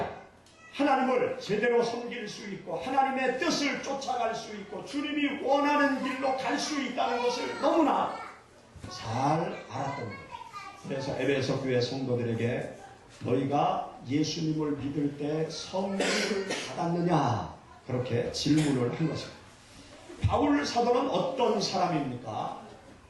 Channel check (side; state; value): both; identical; correlation 1.00